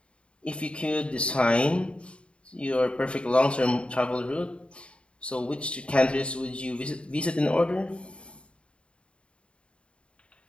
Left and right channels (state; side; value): late; right; 0.057 ms